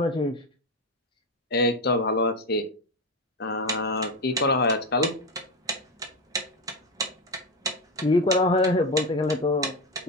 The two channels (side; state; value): both; normal; correlation 0.14